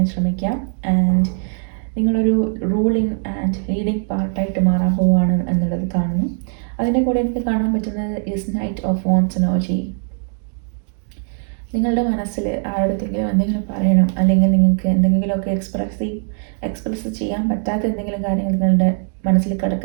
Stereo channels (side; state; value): left; silent; 55 dB below the other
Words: ശ്രമിക്കുക. ആൻഡ് നിങ്ങളൊരു റൂളിംഗ് ആൻഡ് ലീഡിങ് പാർട്ടായിട്ട് മാറാൻ പോവുകയാണ് എന്നുള്ളത് കാണുന്നു. അതിൻ്റെ കൂടെ എനിക്ക് കാണാൻ പറ്റുന്നത് is knight of wands energy. നിങ്ങളുടെ മനസ്സിൽ ആരുടെങ്കിലും എന്തെങ്കിലും പറയണം, അല്ലെങ്കിൽ നിങ്ങൾക്ക് എന്തെങ്കിലുമൊക്കെ എക്സ്പ്രസ് ചെയ്യാൻ പറ്റാത്ത എന്തെങ്കിലും കാര്യങ്ങൾ നിങ്ങളുടെ മനസ്സിൽ